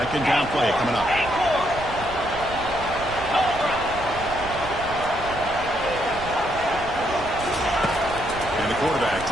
down play coming up. Quarterback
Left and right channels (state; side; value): noise; right; rumble, 12 dB below the sound